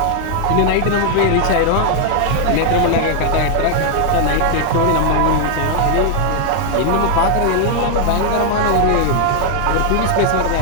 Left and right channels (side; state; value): both; different; correlation 0.00